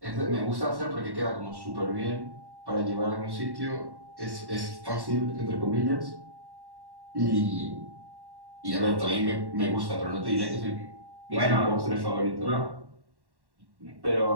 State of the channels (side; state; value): left; late; 1.1 ms